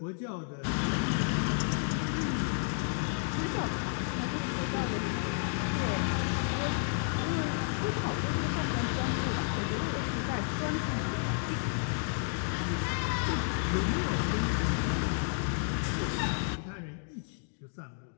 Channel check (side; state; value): right; silent; 57 dB below the other